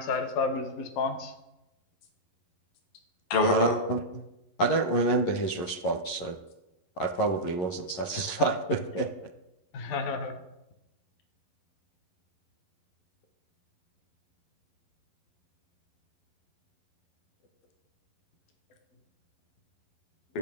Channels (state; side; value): late; right; 11 ms